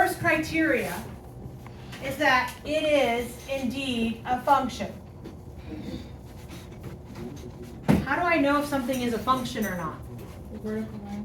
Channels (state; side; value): identical; both; correlation 1.00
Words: criteria is that it is indeed a function. How do I know if something is a function or not?